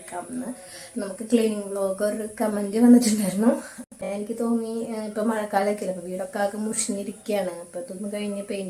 നമുക്ക് ക്ലീനിങ് വ്ലോഗ് ഒരു കമൻറ്റ് വന്നിട്ടുണ്ടായിരുന്നു. എനിക്ക് തോന്നി ഇപ്പോൾ മഴക്കാലമൊക്കെ അല്ലേ, അപ്പോൾ വീടൊക്കെ ആകെ മുഷിഞ്ഞിരിക്കുകയാണ്, അപ്പോൾ ഇതൊന്ന് കഴിഞ്ഞ്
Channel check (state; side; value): identical; both; correlation 1.00